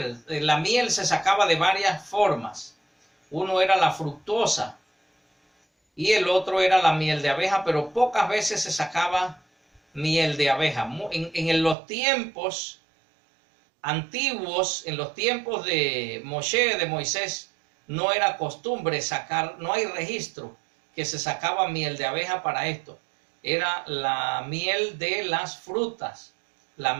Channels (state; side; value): drops out; left; at 11.8 s